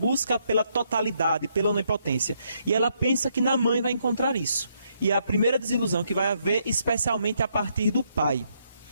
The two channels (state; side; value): inverted; both; correlation -0.74